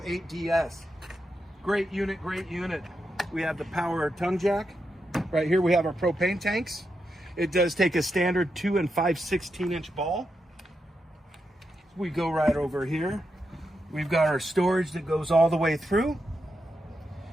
Great unit, great unit. We have the power tongue jack. Right here we have our propane tanks. It does take a standard 2 and 5/16 inch ball. We go right over here. We've got our storage that goes all the way through.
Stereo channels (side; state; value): both; normal; correlation 0.85